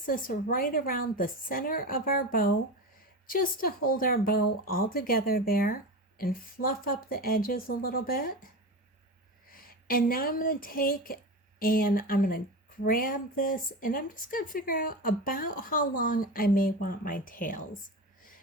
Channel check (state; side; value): normal; both; correlation 0.25